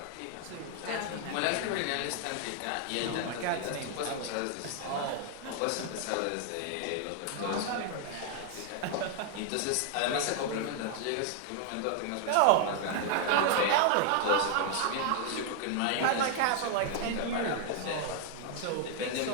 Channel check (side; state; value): both; different; correlation 0.00